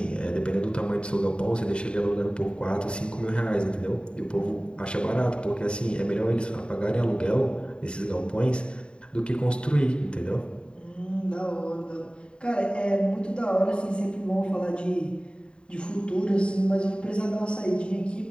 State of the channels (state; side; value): late; right; 0.052 ms